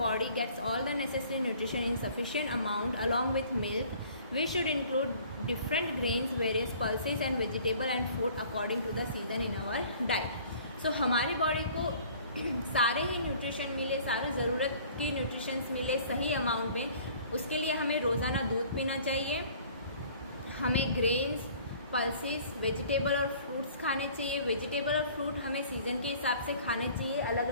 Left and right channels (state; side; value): inverted; both; correlation -0.52